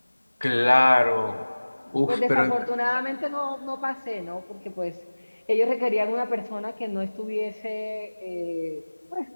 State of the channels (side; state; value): both; inverted; correlation -1.00